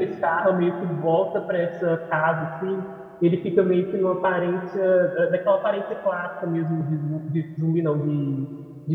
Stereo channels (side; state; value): both; identical; correlation 1.00